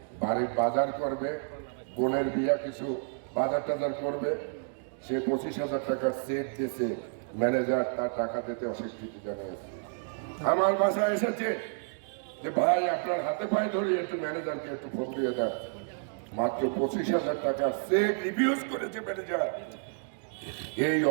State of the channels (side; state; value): left; silent; 58 dB below the other